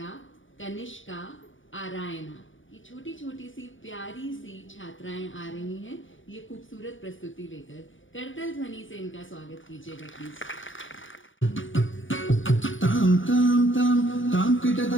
कनिष्का आरायना। ये छोटी छोटी सी प्यारी सी छात्राएं आ रही हैं ये खूबसूरत प्रस्तुति लेकर। करतल ध्वनि से इनका स्वागत कीजिएगा प्लीज। ताम ताम ताम ताम किट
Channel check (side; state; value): right; late; 0.57 ms